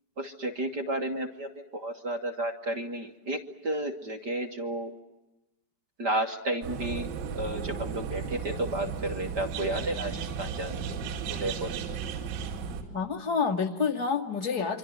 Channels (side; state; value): left; late; 5.0 ms